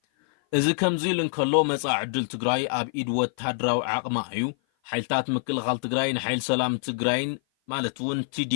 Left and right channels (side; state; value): right; silent; 56 dB below the other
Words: እዚ ከምዚ ልንከሎ መጻዕ ዕድል ትግራይ ኣብ ኢድ ወታደራዊ ዓቕማ እዩ ሓይልታት ምክልኻል ትግራይ ንሓይል ሰላም ትግራይን ማለት እውን